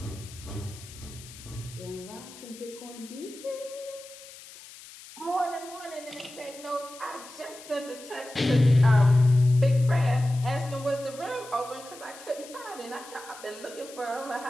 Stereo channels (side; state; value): left; noise; hiss, 17 dB below the sound